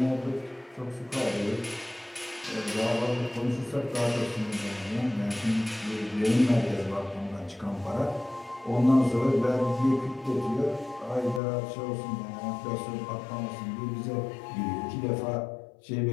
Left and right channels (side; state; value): right; drops out; at 11.4 s